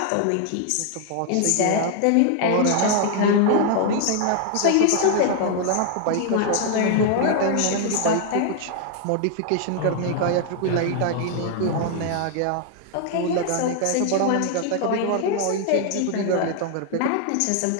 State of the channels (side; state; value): both; different; correlation 0.00